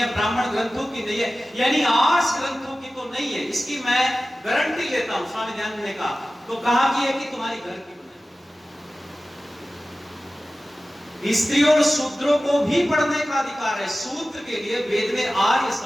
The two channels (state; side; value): normal; both; correlation 0.96